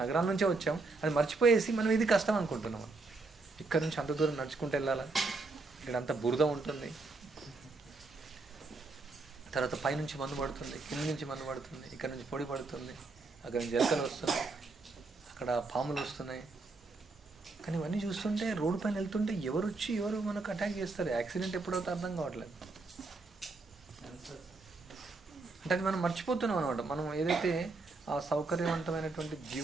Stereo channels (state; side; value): quieter; left; 3.7 dB